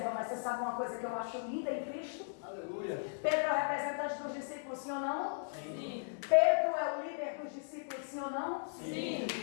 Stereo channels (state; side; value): silent; right; digital silence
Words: mas você sabe uma coisa que eu acho linda em Cristo? Aleluia. Pedro é o representante dos discípulos, sim ou não? Sim. Pedro é o líder dos discípulos, sim ou não? Sim.